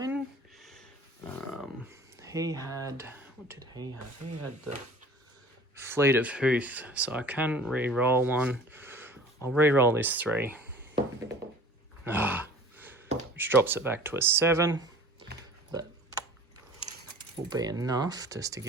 He had... What did he have? He had the Fleet of Hooth. So I can re-roll one. I'll re-roll this 3. Which drops it back to a 7. That will be enough just to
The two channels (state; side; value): normal; both; correlation 0.44